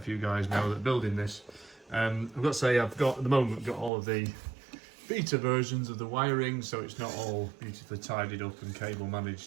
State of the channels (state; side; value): drops out; left; at 3.9 s